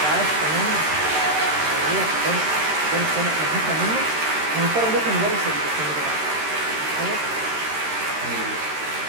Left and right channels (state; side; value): late; left; 13 ms